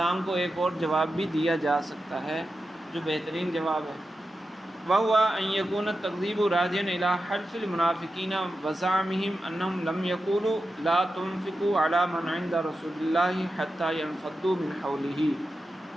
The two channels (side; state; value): both; normal; correlation 0.91